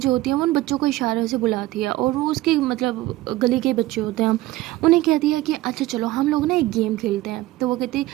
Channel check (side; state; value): left; quieter; 17.2 dB